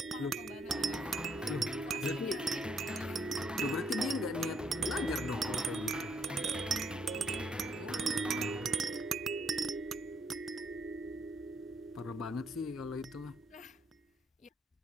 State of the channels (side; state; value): both; normal; correlation 0.71